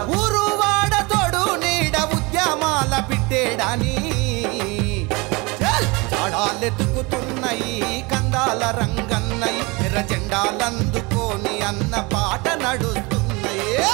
ఊరు వాడ తోడు నీడ ఉద్యమాల పిట్టేడని చాడాలెతుకుతున్నాయి కందాల రంగన్నయి. ఎర్ర జెండాలందుకోని అన్న పాట నడుస్తున్నాయి.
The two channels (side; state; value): left; quieter; 26.0 dB